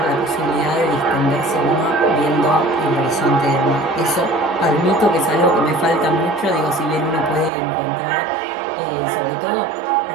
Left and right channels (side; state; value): left; drops out; at 7.5 s